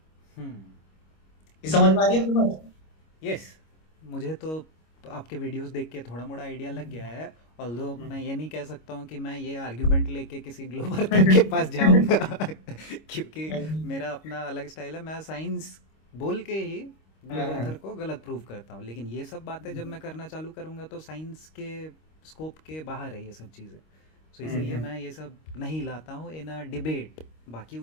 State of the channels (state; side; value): late; right; 25 ms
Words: हम्म। ये समझ में आ रही है आपकी बात? यस, मुझे तो आपके वीडियोस देख के थोड़ा मोड़ा आइडिया लग गया है। ऑल्दो मैं ये नहीं कह सकता हूँ कि मैं ये आर्ग्यूमेंट लेके किसी ग्लोबल के पास जाऊँगा क्योंकि मेरा अपना अलग स्टाइल है। मैं साइंस बोल के ही ग्लोबल को गलत प्रूव करता हूँ, लेकिन ये सब बातें जब मैं करना चालू करूँगा तो साइंस के स्कोप के बाहर है ये सब चीज़ें। सो इसीलिए मैं ये सब नहीं लाता हूँ इन अ डिबेट। बाकी